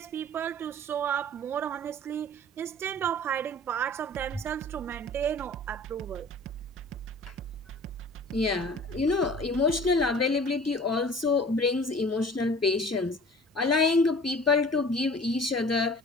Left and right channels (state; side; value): normal; both; correlation 0.45